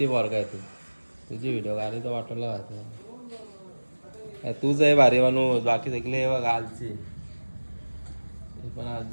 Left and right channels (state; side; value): inverted; both; correlation -1.00